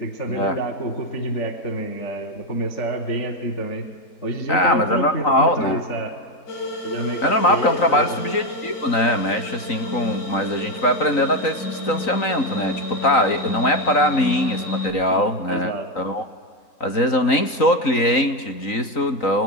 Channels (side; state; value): right; late; 3.9 ms